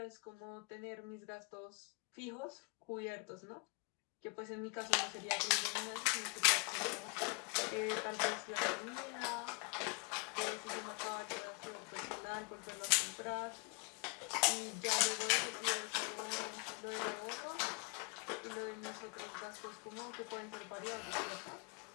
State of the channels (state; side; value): quieter; right; 33.0 dB